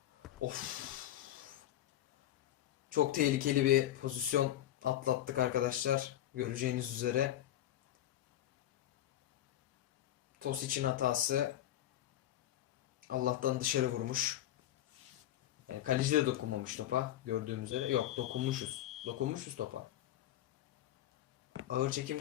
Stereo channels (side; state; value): right; quieter; 12.7 dB